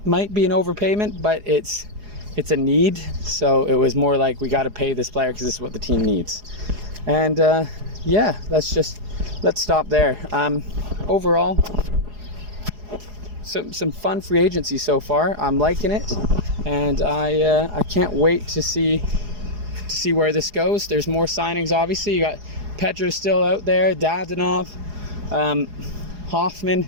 be an overpayment, but it's a need. So it was more like, we got to pay this player because this is what the team needs. And yeah, let's stop there. Overall, some fun free agency so far. I'm liking it, and I can't wait to see where this goes. There's more signings, obviously. You got Petra still out there, Dadonov, Hoffman.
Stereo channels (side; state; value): left; late; 4.8 ms